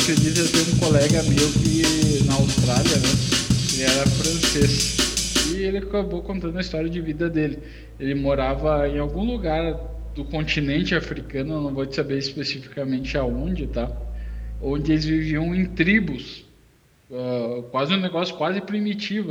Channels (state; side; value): identical; both; correlation 1.00